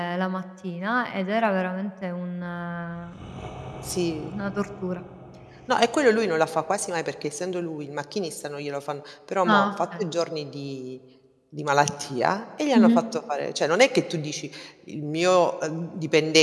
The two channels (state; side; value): identical; both; correlation 1.00